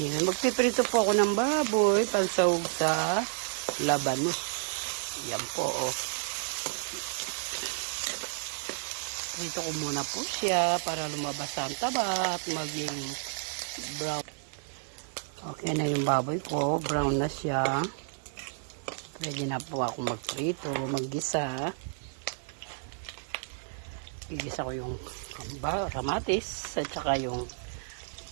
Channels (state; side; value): silent; left; digital silence